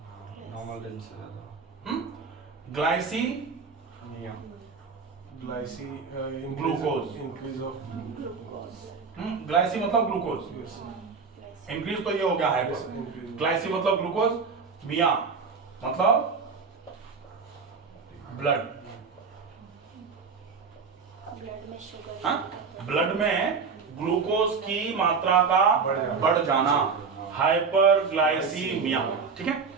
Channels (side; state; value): left; quieter; 5.2 dB